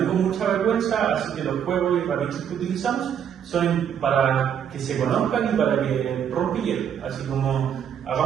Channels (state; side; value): quieter; left; 8.6 dB